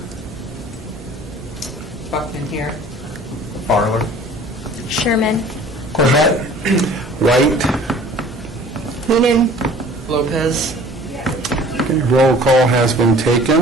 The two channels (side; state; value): both; normal; correlation 0.48